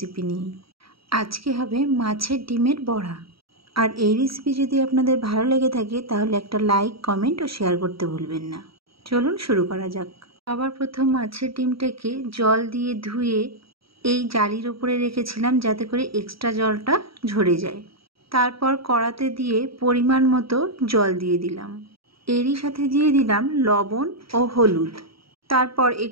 নিয়ে। আজকে হবে মাছের ডিমের বড়া। আর এই রেসিপি যদি আপনাদের ভালো লেগে থাকে তাহলে একটা লাইক, কমেন্ট ও শেয়ার করতে ভুলবেন না। চলুন শুরু করা যাক। সবার প্রথম মাছের ডিমটাকে জল দিয়ে ধুয়ে এই জালির ওপরে রেখেছিলাম যাতে করে এক্সট্রা জলটা ঝরে যায়। তারপর কড়াতে দিয়ে পরিমাণ মতো জল দিয়ে দিলাম। এরই সাথে দিয়ে দিলাম লবণ ও হলুদ। তারপর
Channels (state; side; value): late; left; 0.75 ms